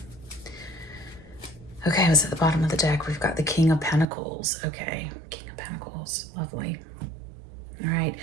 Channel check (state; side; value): drops out; left; at 4.0 s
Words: Okay, I was at the bottom of the deck. We've got the King of Pentacles. Okay, King of Pentacles, lovely. All right,